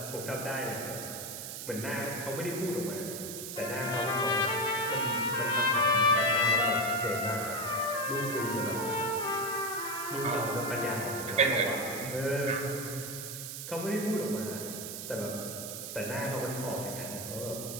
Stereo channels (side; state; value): right; noise; hiss, 7 dB below the sound